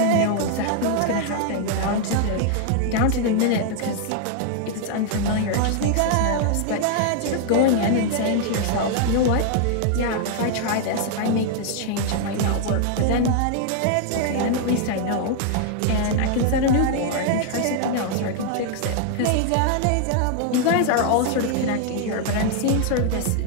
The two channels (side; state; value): both; different; correlation 0.00